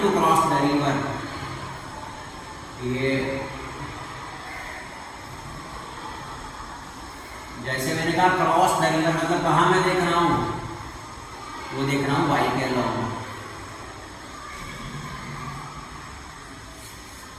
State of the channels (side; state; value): both; identical; correlation 1.00